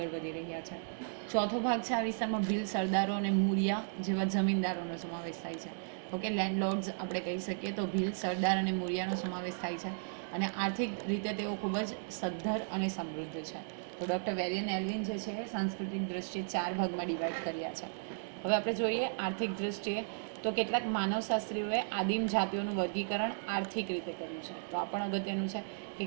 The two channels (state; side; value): silent; left; digital silence